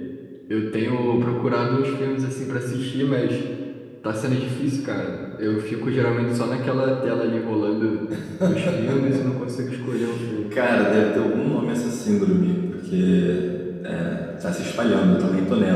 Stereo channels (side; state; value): both; identical; correlation 1.00